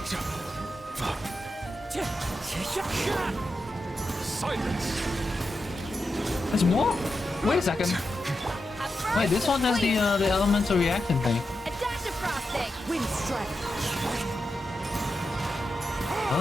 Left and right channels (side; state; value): both; normal; correlation 0.88